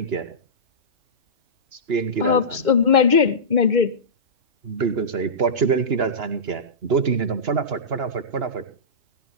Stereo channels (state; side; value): late; left; 2.1 ms